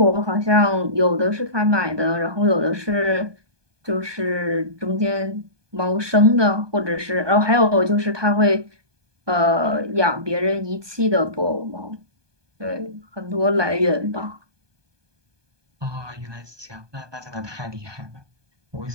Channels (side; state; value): left; late; 1.2 ms